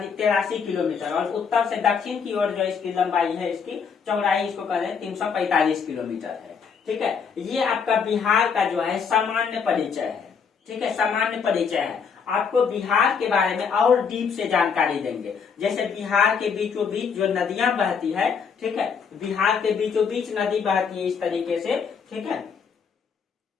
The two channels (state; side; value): quieter; right; 6.2 dB